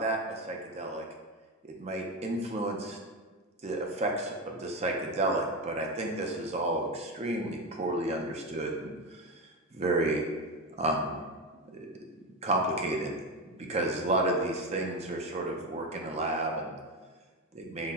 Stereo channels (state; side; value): normal; both; correlation 0.15